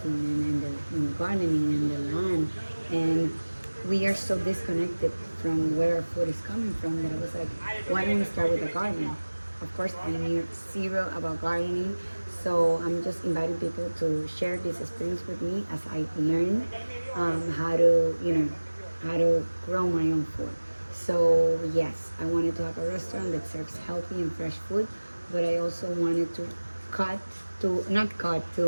and gardening and the land. And we are so disconnected from where our food is coming from that I was like, why don't we start with the garden? Of course, I knew zero about gardening, so I'm just inviting people to share this experience with me as I learn how to, how to grow my own food. So yes, I wanted to have a restaurant that serves healthy and fresh food, but I also wanted to cut to not cut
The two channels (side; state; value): both; inverted; correlation -1.00